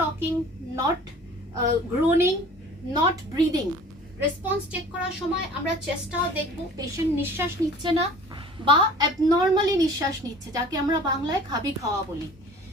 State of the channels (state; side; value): normal; both; correlation 0.46